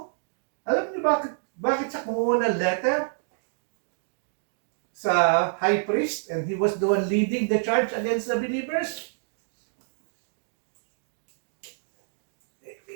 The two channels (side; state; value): left; silent; digital silence